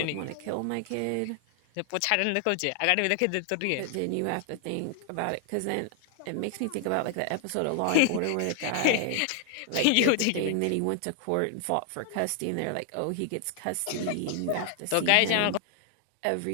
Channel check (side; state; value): both; different; correlation 0.00